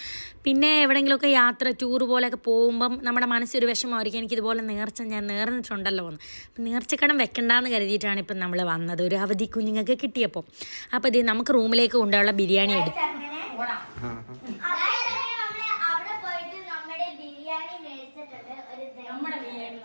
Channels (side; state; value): both; inverted; correlation -1.00